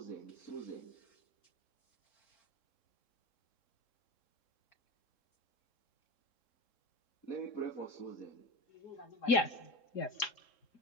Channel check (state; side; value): late; right; 3.7 ms